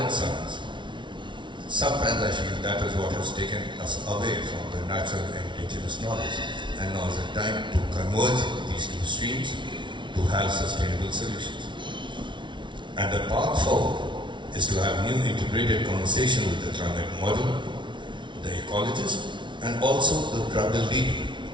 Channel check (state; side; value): late; left; 0.24 ms